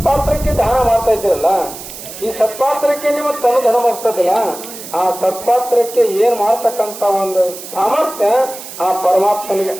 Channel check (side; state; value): right; noise; hiss, 13 dB below the sound